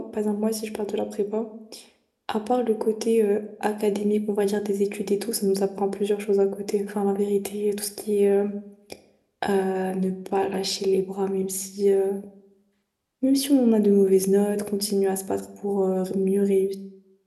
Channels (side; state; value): both; identical; correlation 1.00